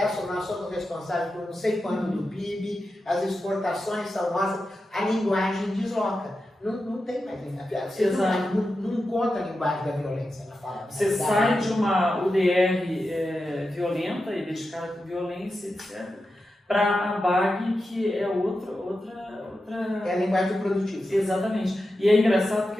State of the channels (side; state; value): both; normal; correlation 0.90